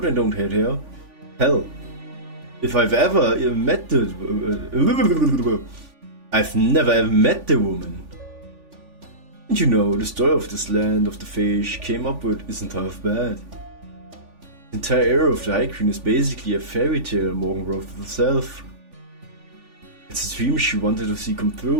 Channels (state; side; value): late; left; 3.5 ms